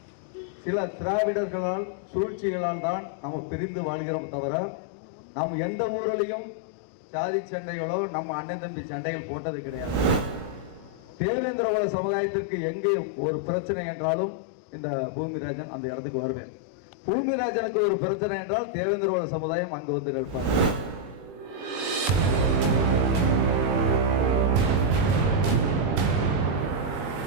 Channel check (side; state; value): left; late; 20 ms